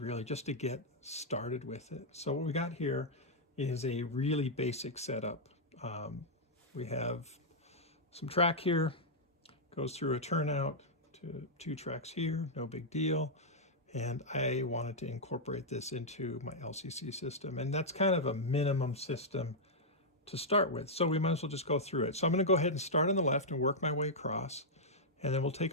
really just to get started with it? So what we got here is a really basic setup. We have some track here, goes through a turnout to 2 tracks here, no big deal. And I wanted to incorporate this into my LCC system. And that's kind of a minimum system to start with. So we might as well just go through it. So I'm going to go ahead and start on the left and work my way across. And then we'll take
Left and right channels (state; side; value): normal; both; correlation -0.07